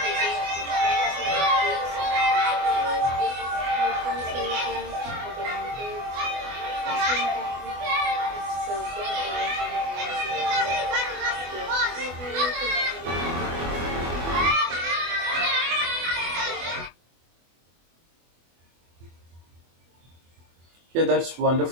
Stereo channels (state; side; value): late; left; 24 ms